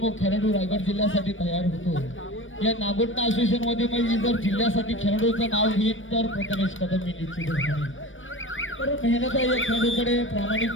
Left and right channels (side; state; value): right; late; 0.57 ms